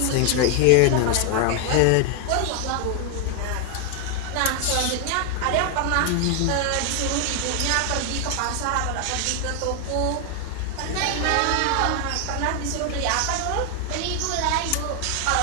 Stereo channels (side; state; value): both; different; correlation 0.00